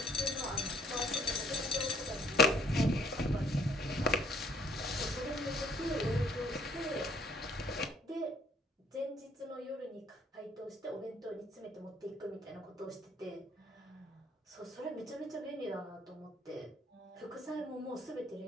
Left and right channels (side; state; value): both; normal; correlation 0.62